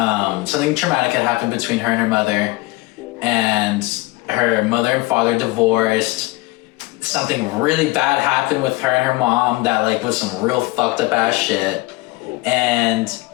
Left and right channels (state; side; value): quieter; right; 21.5 dB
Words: something traumatic had happened between her and her mother, and her mother and father divorced. Something really bad happened with her and her mom that like was some real fucked up ass shit, and